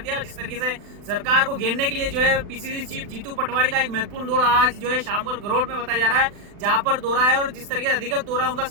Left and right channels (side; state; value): left; late; 40 ms